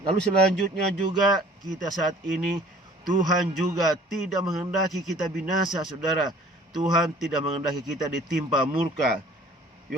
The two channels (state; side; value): normal; both; correlation 0.51